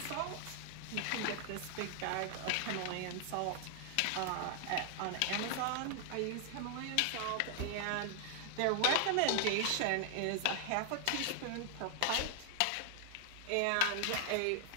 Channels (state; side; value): different; both; correlation 0.00